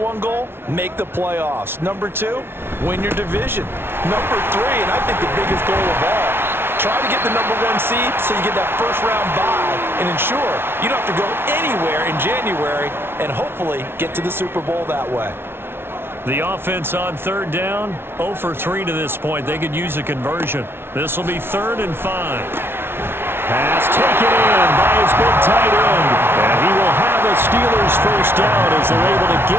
goal? Make the playoffs. Number two, win your division. Number three, and I think the biggest goal of all, try to get the number one seed so you get that first round bye and ensure you don't have to go anywhere in January and hopefully get to the Super Bowl that way. The offense on third down, 0 for 3 to this point. They could use a conversion. This will be 3rd and 5. Pass taken in by his big tight end. And he will have a Steelers first down as they're able to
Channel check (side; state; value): left; late; 0.11 ms